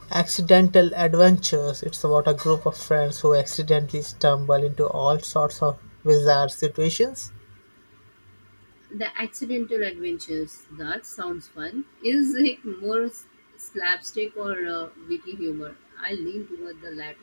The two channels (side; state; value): both; inverted; correlation -1.00